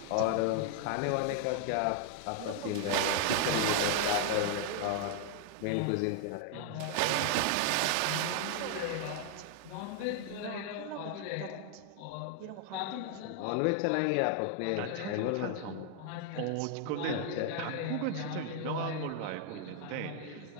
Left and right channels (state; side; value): different; both; correlation 0.00